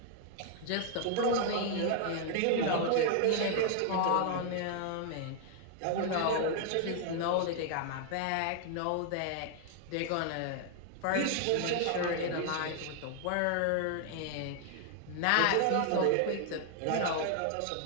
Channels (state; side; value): different; both; correlation 0.00